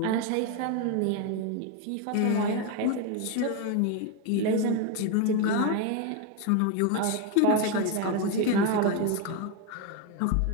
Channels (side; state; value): both; different; correlation 0.02